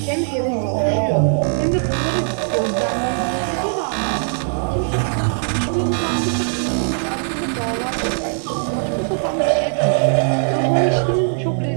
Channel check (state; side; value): silent; left; digital silence